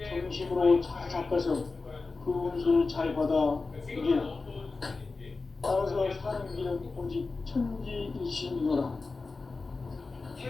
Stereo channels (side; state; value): right; quieter; 3.9 dB